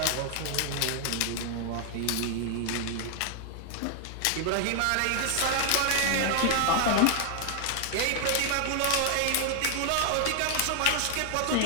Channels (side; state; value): both; different; correlation 0.00